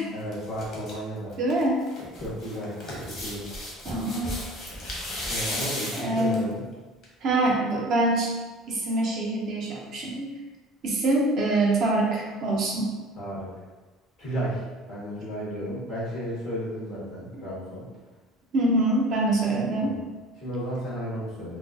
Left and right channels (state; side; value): normal; both; correlation 0.44